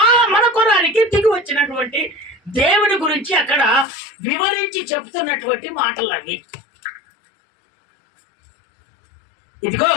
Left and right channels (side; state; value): right; drops out; at 3.9 s